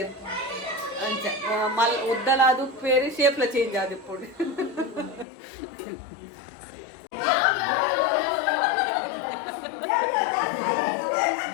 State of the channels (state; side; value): drops out; right; at 5.2 s